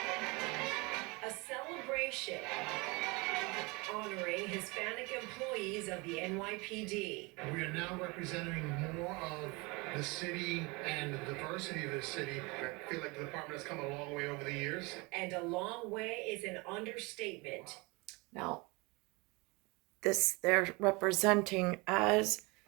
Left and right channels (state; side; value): quieter; left; 26.6 dB